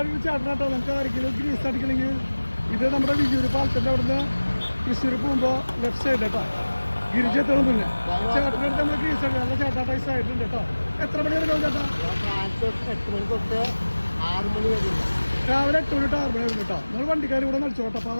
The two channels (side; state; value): both; inverted; correlation -1.00